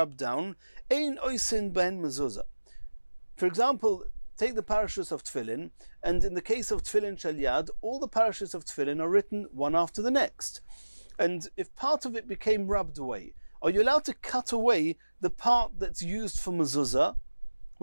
down, ein oisin ben mezuzah. For example, take the parashas of tefillin, and in the case of tefillin shel yad, all the parashas of tefillin are written one after the next. And if part of it became rubbed away, are you allowed to cut away the part that's used for mezuzah,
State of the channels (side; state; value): both; inverted; correlation -1.00